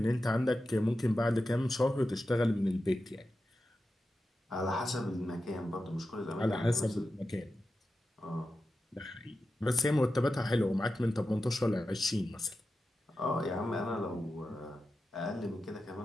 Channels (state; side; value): normal; both; correlation 0.91